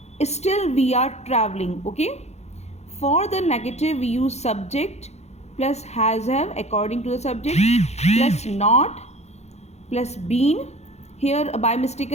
still we are traveling. Okay. For the negative we use subject plus has have according to the subject plus not plus been. Here by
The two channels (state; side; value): late; right; 0.32 ms